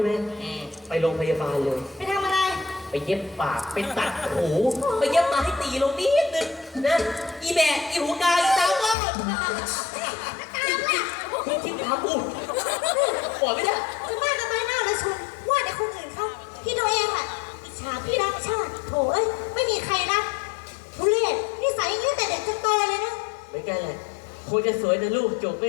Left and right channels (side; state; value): right; drops out; at 9.0 s